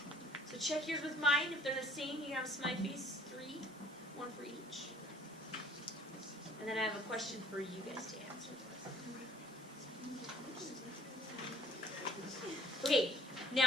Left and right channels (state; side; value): normal; both; correlation 0.56